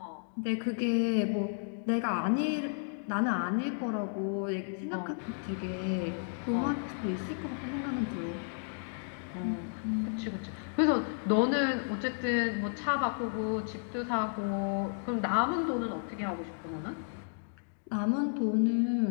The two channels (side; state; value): right; silent; digital silence